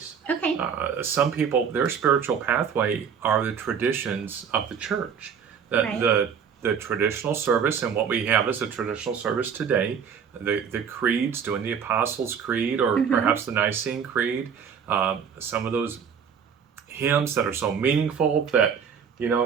Okay. Some people, their spiritual pathway are the traditions of the church. The traditional service, and what we have is a traditional service today, the creeds, doing the Apostles' Creed or perhaps the Nicene Creed, some of those hymns that are so meaningful that,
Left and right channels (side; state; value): left; quieter; 7.1 dB